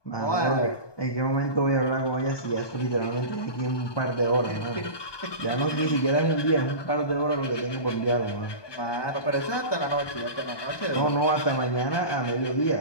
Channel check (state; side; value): late; right; 1.2 ms